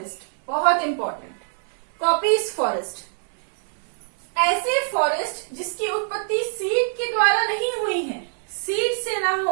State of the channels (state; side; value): silent; left; digital silence